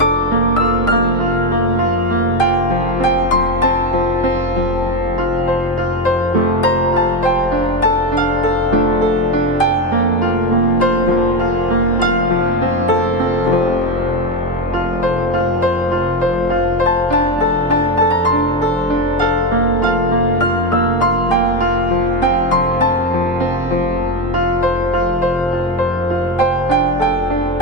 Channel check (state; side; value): normal; both; correlation 0.13